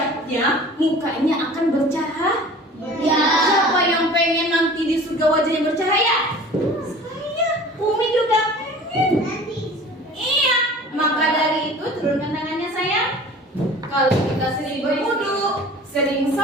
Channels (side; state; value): both; normal; correlation 0.43